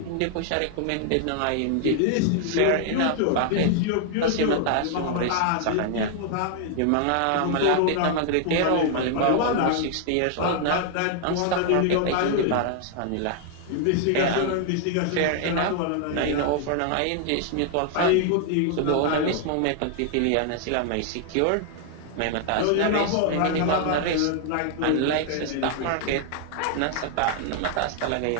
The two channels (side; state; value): both; different; correlation 0.00